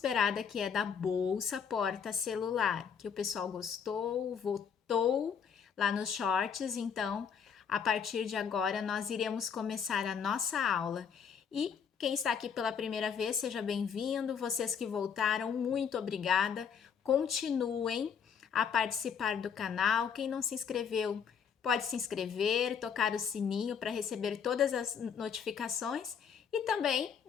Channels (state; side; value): quieter; right; 7.1 dB